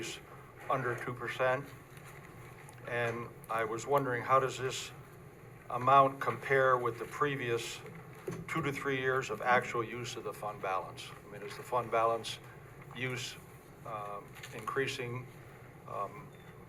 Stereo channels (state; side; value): identical; both; correlation 1.00